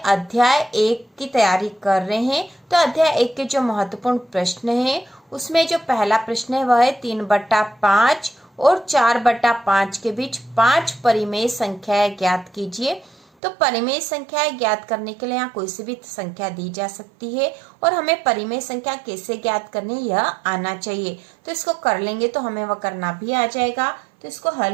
1 की तैयारी कर रहे हैं। तो अध्याय 1 के जो महत्वपूर्ण प्रश्न हैं उसमें जो पहला प्रश्न है वह है 3/5 और 4/5 के बीच 5 परिमेय संख्याएं ज्ञात कीजिए। तो परिमेय संख्याएं ज्ञात करने के लिए यहाँ कोई सी भी संख्या दी जा सकती है और हमें परिमेय संख्या कैसे ज्ञात करनी यह आना चाहिए। तो इसको कर लेंगे तो हमें वह करना भी आ जाएगा। तो इसको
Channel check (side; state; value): left; drops out; at 13.2 s